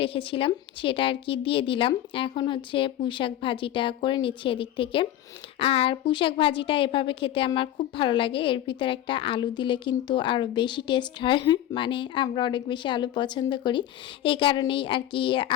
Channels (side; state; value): right; quieter; 12.5 dB